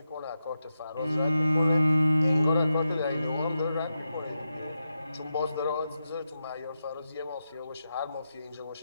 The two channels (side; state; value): both; inverted; correlation -0.88